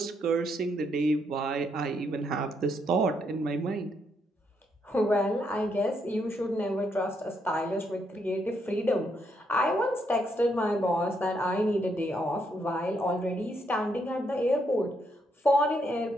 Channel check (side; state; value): both; normal; correlation 0.76